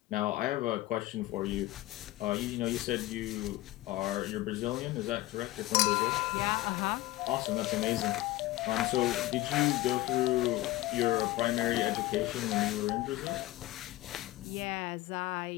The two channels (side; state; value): right; quieter; 17.5 dB